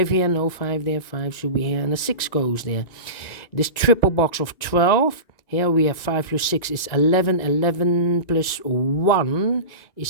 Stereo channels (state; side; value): late; right; 1.9 ms